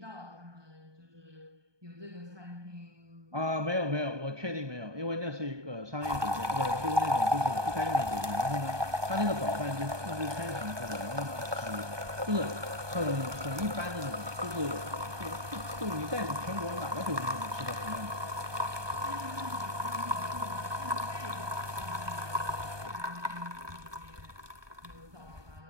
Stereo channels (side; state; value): left; late; 1.2 ms